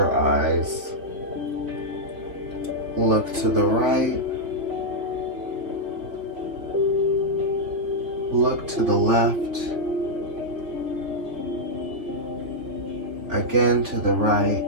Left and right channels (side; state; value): left; late; 3.5 ms